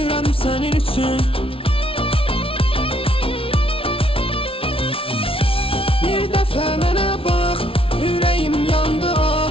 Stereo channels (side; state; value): right; late; 0.26 ms